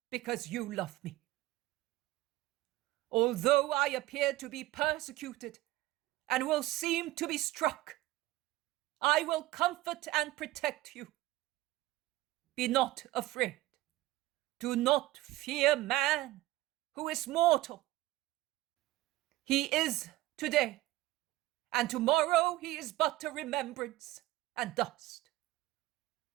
because you love me. Although I appear to be persecuted and will seem to be struck, I will comfort and protect you. Be not afraid. Do not fear man, who is mortal. He is today, and tomorrow he is but a remembrance and dust.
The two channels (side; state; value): left; quieter; 17.4 dB